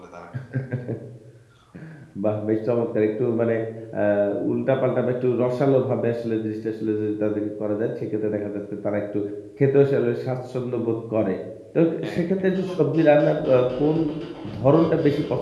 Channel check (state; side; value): identical; both; correlation 1.00